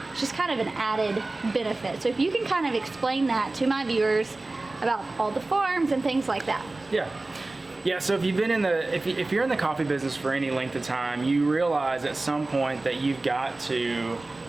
just kind of an added benefit. So if you can kind of explain that to my viewers about all the farms and things like that. Yeah, so if you've been in the, if you're in the coffee business for any length of time, you realize at some point that you've got to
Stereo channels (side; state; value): left; quieter; 3.1 dB